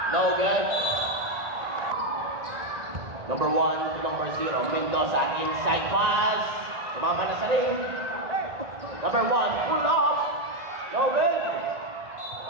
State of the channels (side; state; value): left; late; 1.9 ms